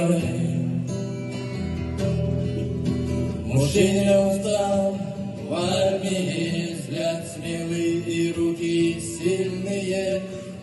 Мужчина устал в армии, взгляд смелый и руки сильные.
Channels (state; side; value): identical; both; correlation 1.00